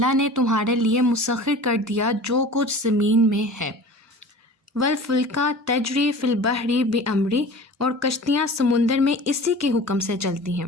نے تمہارے لیے مسخر کر دیا جو کچھ زمین میں ہے. والفلک تجری فی البحر بامری, اور کشتیاں سمندر میں اسی کے حکم سے چلتی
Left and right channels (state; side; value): normal; both; correlation 0.40